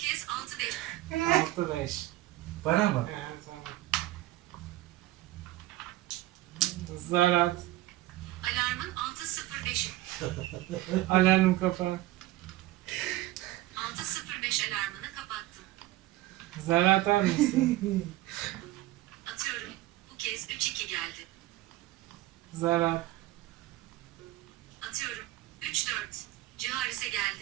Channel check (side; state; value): left; quieter; 16.4 dB